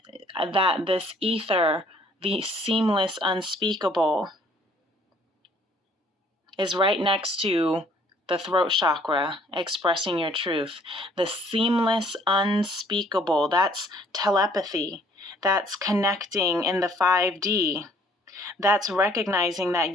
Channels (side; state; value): both; normal; correlation 0.60